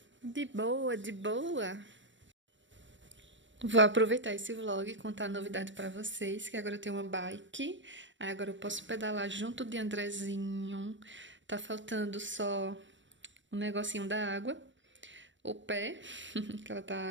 De boa, de boa. Vou aproveitar esse vlog e contar a novidade pra vocês, que agora eu tenho uma bike. Aí agora eu posso pedalar junto de Andrezinho. Tá faltando só um negocinho da água. O pé, que ela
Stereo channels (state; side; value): late; left; 0.54 ms